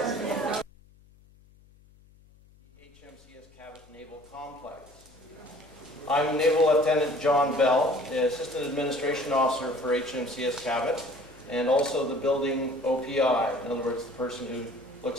HMCS Cabot Naval Complex. I'm Naval Lieutenant John Bell, the Assistant Administration Officer for HMCS Cabot, and also the building OPI, in other words, the person who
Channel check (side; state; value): left; noise; hum, 27 dB below the sound